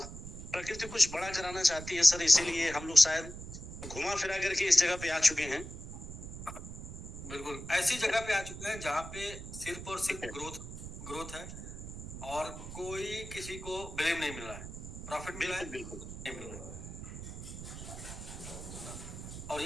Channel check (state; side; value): noise; right; rumble, 10 dB below the sound